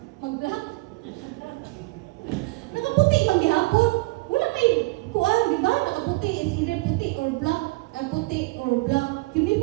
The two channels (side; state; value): left; quieter; 23.2 dB